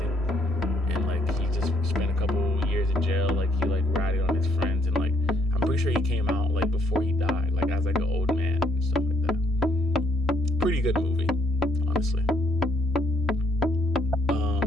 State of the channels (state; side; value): normal; both; correlation 0.69